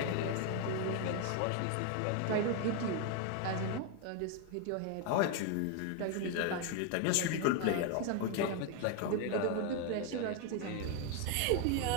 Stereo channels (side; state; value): both; different; correlation 0.01